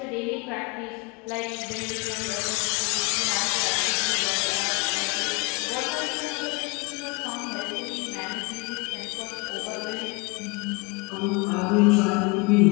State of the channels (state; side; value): quieter; right; 28.4 dB